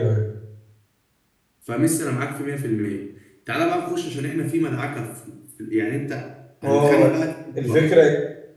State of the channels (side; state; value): both; identical; correlation 1.00